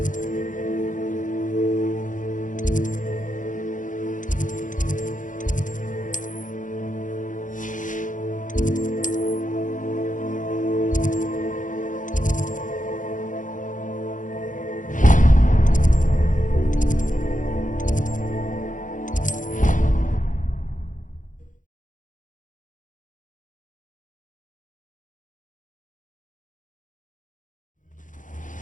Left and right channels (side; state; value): right; late; 0.37 ms